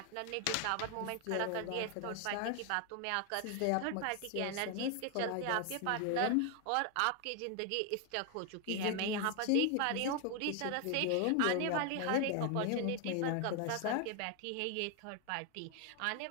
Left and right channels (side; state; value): both; different; correlation 0.00